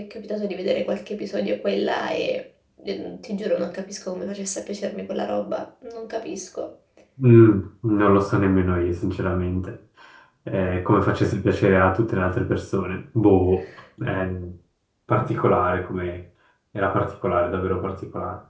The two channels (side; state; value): both; identical; correlation 1.00